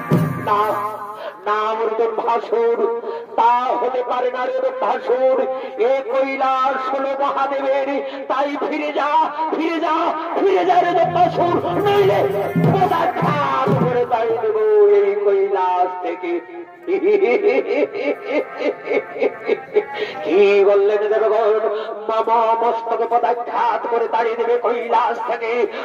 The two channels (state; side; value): identical; both; correlation 1.00